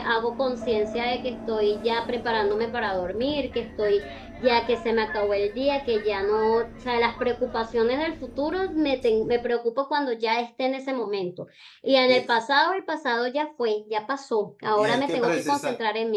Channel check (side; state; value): both; identical; correlation 1.00